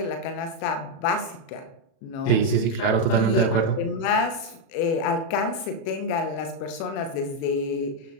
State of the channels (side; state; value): right; late; 36 ms